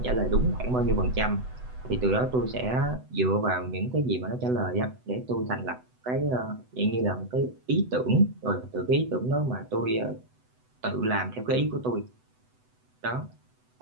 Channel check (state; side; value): late; left; 8.0 ms